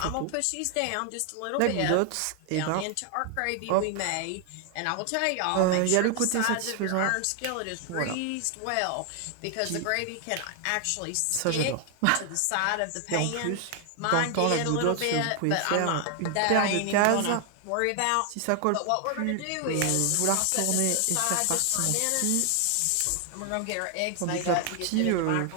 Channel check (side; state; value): both; different; correlation 0.00